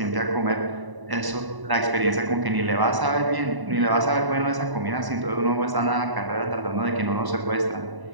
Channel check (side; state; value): left; late; 1.0 ms